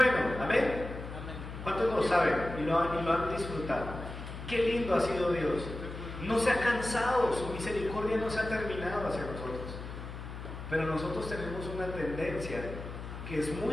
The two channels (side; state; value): left; noise; hum, 9 dB below the sound